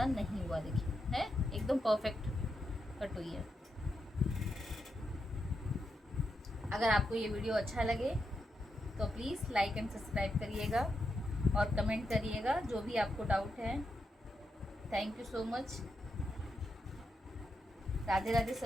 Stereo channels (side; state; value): both; normal; correlation 0.84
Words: नहीं हुआ, देखिए है एकदम परफेक्ट कट हुई है। अगर आपको ये वीडियो अच्छा लगे तो प्लीज़ लाइक एंड सब्सक्राइब करिएगा और कमेंट करिएगा जो भी आपको डाउट है। Thank you so much. Radhe Radhe